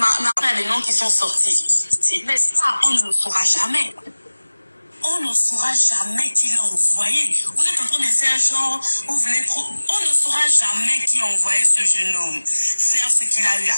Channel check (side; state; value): both; inverted; correlation -1.00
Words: il y a des noms qui sont sortis, mais ça, on ne le saura jamais. On ne saura jamais qui l'a envoyé. Vous êtes en train de faire genre, vous voulez trop. On ne saura jamais qui a envoyé ce jeune homme faire ce qu'il a eu à